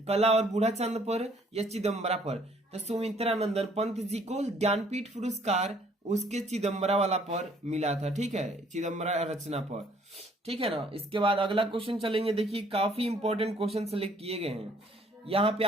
और बूढ़ा चंद पर या चिदम्बरा पर? तो सुमित्रा नंदन पंत जी को ज्ञानपीठ पुरस्कार उसके चिदम्बरा वाला पर मिला था। ठीक है, चिदम्बरा रचना पर। ठीक है ना। इसके बाद अगला क्वेश्चन चलेंगे, देखिए काफी इंपॉर्टेंट क्वेश्चन सेलेक्ट किए गए हैं। यहाँ पे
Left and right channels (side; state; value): both; normal; correlation 0.62